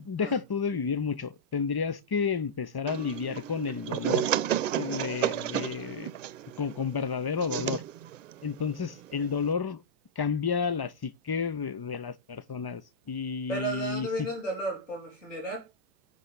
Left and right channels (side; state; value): right; late; 1.1 ms